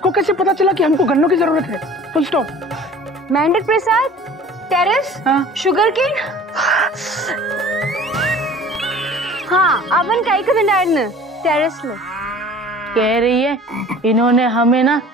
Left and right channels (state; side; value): normal; both; correlation 0.45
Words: कैसे पता चला कि हमको गन्नों की जरूरत है? Full stop. मेंढक प्रसाद, टेरेस, शुगर केन। हाँ अवन काई का न टेरेस में कह रही है इन्होंने हमें ना